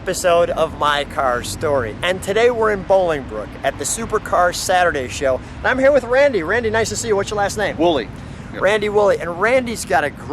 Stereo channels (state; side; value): identical; both; correlation 1.00